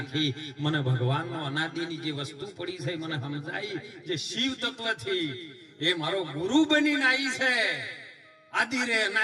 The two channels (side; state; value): both; identical; correlation 1.00